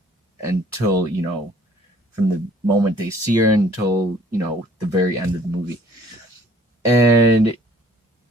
until, you know, from the moment they see her until, you know, the very end of the movie. And,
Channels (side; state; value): both; normal; correlation 0.56